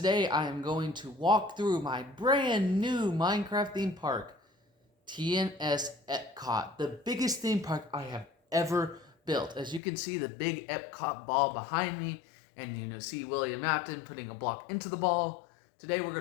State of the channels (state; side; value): drops out; right; at 9.8 s